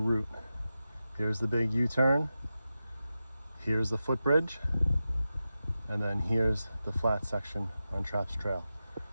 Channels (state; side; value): inverted; both; correlation -0.92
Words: Here's the big U-turn, here's the footbridge, and then here's the flat section on Traps Trail.